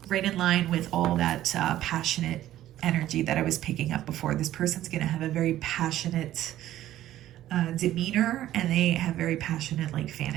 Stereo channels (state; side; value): quieter; left; 13.4 dB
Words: right in line with all that passionate energy that I was picking up before. This person's going to have a very passionate demeanor, and they have very passionate like